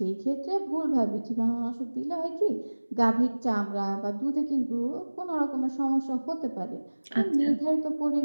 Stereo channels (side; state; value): both; inverted; correlation -1.00